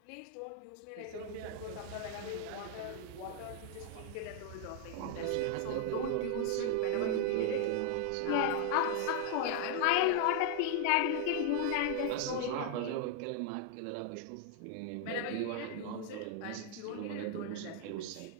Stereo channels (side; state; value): both; different; correlation 0.00